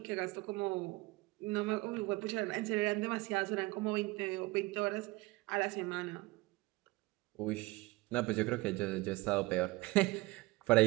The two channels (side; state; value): left; quieter; 21.6 dB